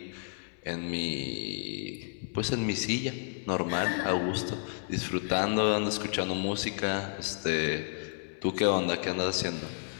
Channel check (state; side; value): silent; right; 57 dB below the other